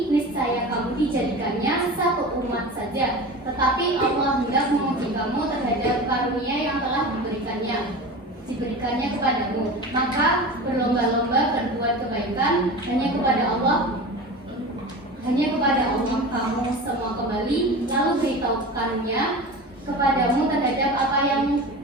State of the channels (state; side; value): normal; both; correlation 0.31